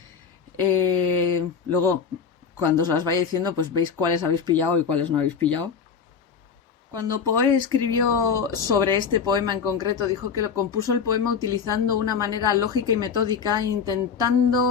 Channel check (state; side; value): quieter; right; 6.4 dB